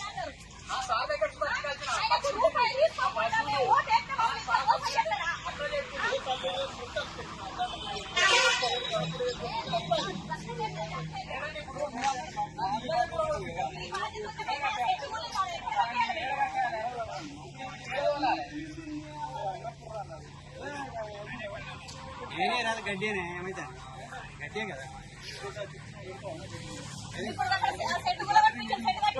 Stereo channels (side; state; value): both; identical; correlation 1.00